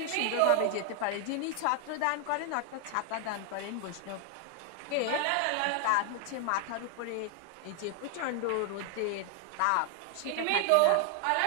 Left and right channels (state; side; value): different; both; correlation 0.00